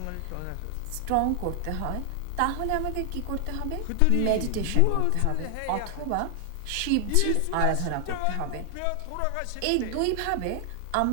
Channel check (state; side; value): different; both; correlation 0.00